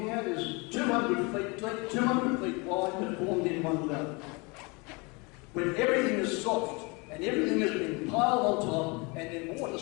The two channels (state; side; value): quieter; right; 28.6 dB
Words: at is 200 feet deep, 200 feet wide, but formed in one dome. When everything is soft and everything has been piled on top, and then water